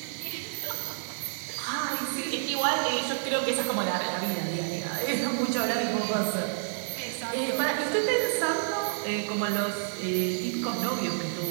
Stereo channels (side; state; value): left; silent; digital silence